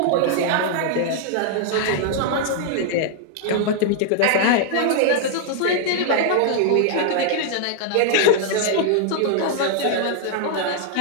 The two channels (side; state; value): both; different; correlation -0.01